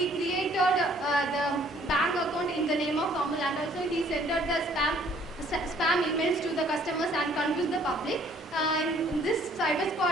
created the bank account in the name of Amul, and also he sent out the spam emails to the customers and confused the public. This cyber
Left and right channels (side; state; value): both; normal; correlation 0.60